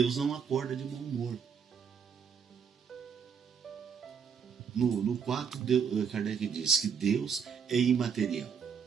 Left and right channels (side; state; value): left; quieter; 6.8 dB